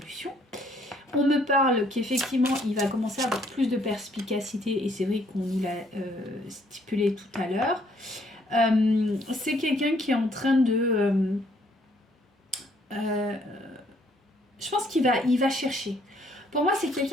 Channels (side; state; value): both; normal; correlation 0.65